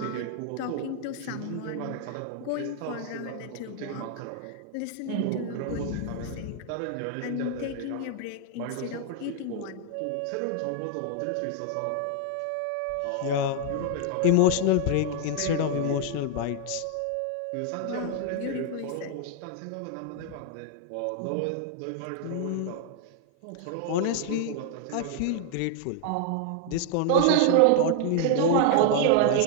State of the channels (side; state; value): both; different; correlation 0.00